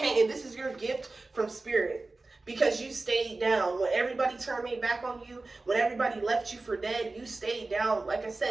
And this is your gift from spirit because you stayed down. When everybody turned their back on you, when everybody left you for dead, you stayed down, like I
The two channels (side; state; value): left; quieter; 3.4 dB